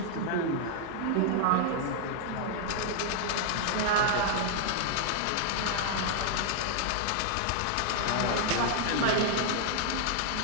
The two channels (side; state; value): both; different; correlation 0.00